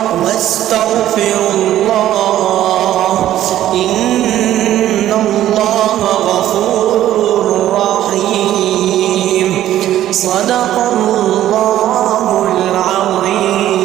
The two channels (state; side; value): quieter; left; 12.7 dB